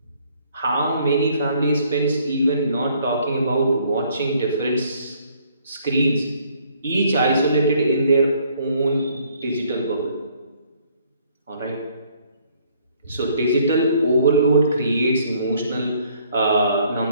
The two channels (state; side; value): inverted; both; correlation -0.63